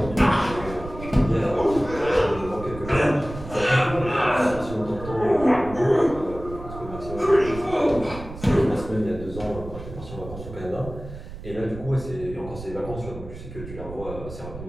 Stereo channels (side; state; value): right; noise; rumble, 12 dB below the sound